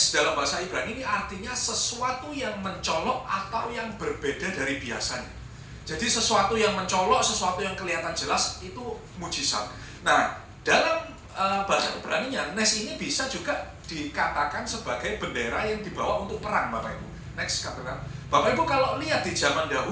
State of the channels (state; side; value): identical; both; correlation 1.00